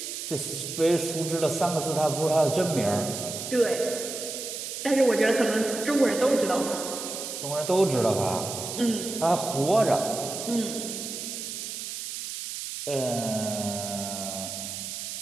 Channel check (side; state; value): right; noise; hiss, 6 dB below the sound